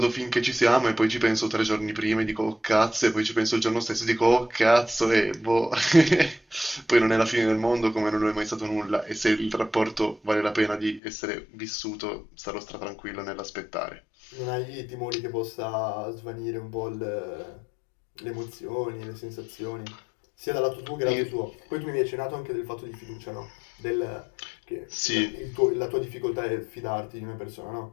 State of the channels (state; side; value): drops out; right; at 11.0 s